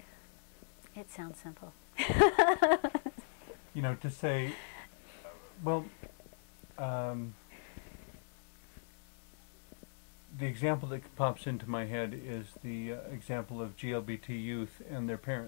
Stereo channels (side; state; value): right; silent; digital silence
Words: It sounds simple. To say, well, the example that pops into my head is the example of GLBT youth and their